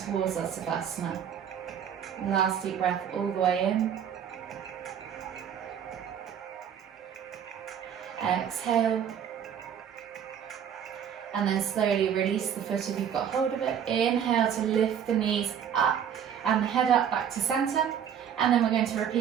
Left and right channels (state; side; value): quieter; left; 8.6 dB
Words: our Savasana. Last deep breath all the way in. Exhale. And then slowly release the foot if you've got hold of it. Inhale to lift the knees up and the head up back to center. And then we're going to